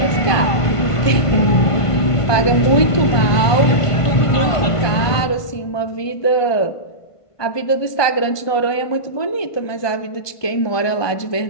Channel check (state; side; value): late; right; 1.5 ms